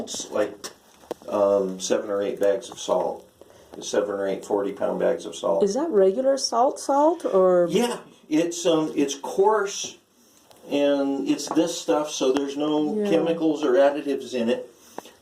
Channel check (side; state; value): both; identical; correlation 1.00